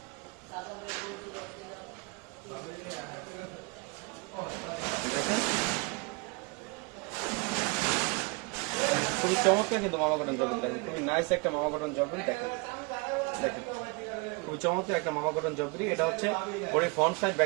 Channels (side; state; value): left; quieter; 28.7 dB